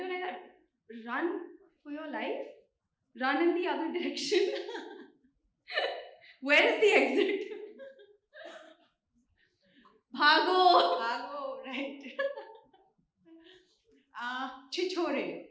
like that, run for your life, run in the other direction. Where is the exit? Bhago! Bhago, right. Chichore,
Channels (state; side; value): identical; both; correlation 1.00